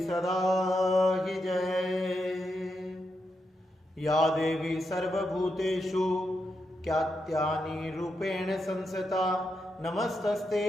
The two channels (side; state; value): both; normal; correlation 0.84